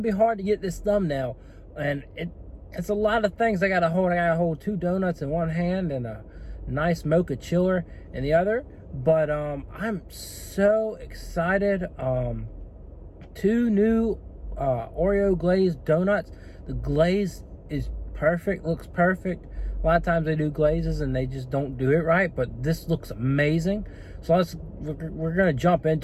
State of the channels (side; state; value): both; identical; correlation 1.00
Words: be hard to get this thumbnail, and it's a lot of things I got to hold. I got to hold 2 donuts in one hand and a nice mocha chiller in the other, but I'm so excited. 2 new Oreo glazed donuts. The glaze is perfect, looks perfect. A lot of times they do glazes and they just don't do it right, but this looks amazing. So we're gonna jump